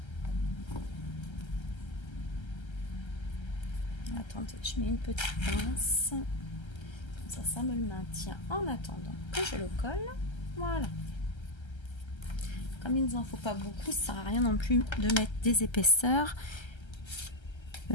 Attendez, je mets une petite pince. Comme ça me le maintient en attendant que je le colle. Voilà. Comme il ne nous en faut pas beaucoup, ça sert à rien non plus de mettre des épaisseurs.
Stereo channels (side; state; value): right; late; 1.3 ms